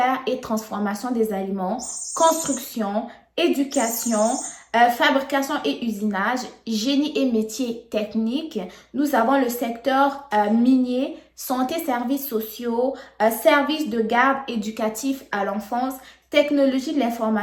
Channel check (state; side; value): identical; both; correlation 1.00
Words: et transformation des aliments, construction, éducation, fabrication et usinage, génie et métiers techniques. Nous avons le secteur minier, santé, services sociaux, services de garde éducatif à l'enfance, technologie de